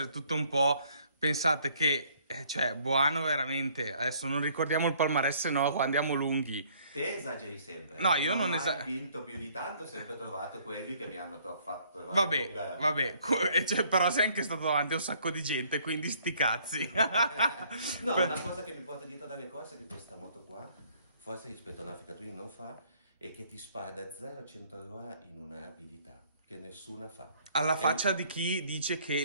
tutto un po'... Pensate che, cioè, Buano veramente... Adesso non ricordiamo il palmarès, no, qua andiamo lunghi. Te esageri sempre. No, io non ho vinto più di tanto, ho sempre trovato quelli che mi hanno fatto... Vabbè, però sei anche stato davanti a un sacco di gente, quindi sti cazzi. No, una cosa che mi porta dietro dalle cose è che questa moto qua, forse rispetto a un'Africa Twin non fa, è che ti spara da 0 a 100 all'ora in una rapidità che nessuna fa. Alla faccia di chi dice che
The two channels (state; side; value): inverted; both; correlation -0.61